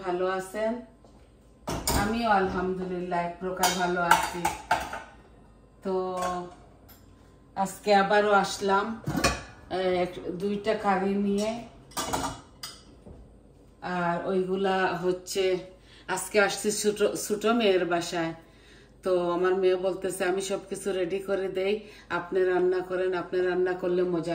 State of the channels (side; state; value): both; identical; correlation 1.00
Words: ভালো আছেন। আমিও আলহামদুলিল্লাহ এক প্রকার ভালো আছি। তো আজকে আবারও আসলাম দুইটা কারি নিয়ে, আর ওইগুলা হচ্ছে আজকে আসছি ছোট মেয়ের বাসায়। তো আমার মেয়ে বলতেছে আমি সবকিছু রেডি করে দেই, আপনি রান্না করেন, আপনি রান্না করলে মজা